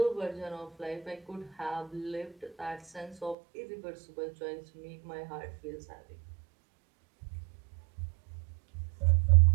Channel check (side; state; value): left; drops out; at 3.4 s